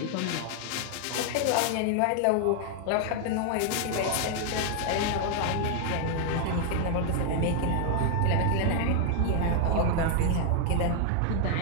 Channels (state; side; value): different; both; correlation 0.00